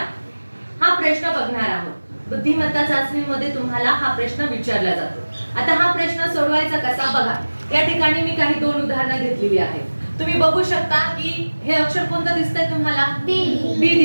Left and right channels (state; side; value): inverted; both; correlation -1.00